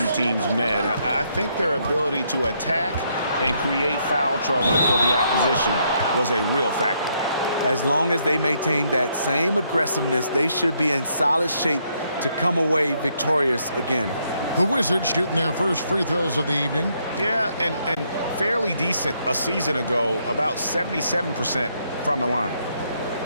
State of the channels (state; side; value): inverted; both; correlation -0.73